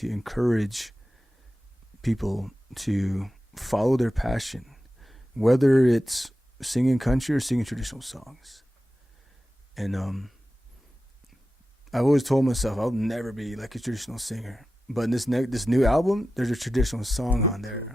to encourage people to follow their passion, whether it's singing country or singing traditional songs. And I've always told myself I'll never be like a traditional singer, but in this new album, there's a traditional song on there. Cool.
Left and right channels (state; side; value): normal; both; correlation 0.93